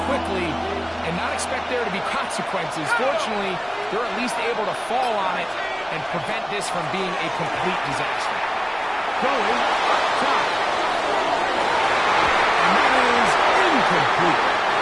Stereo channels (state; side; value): identical; both; correlation 1.00